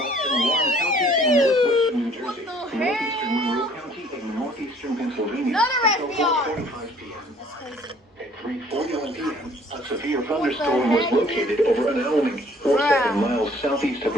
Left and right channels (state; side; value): normal; both; correlation 0.57